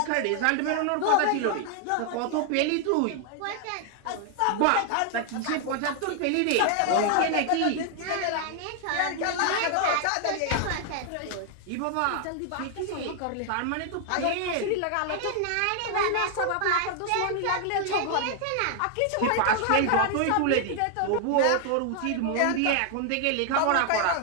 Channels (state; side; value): different; both; correlation 0.00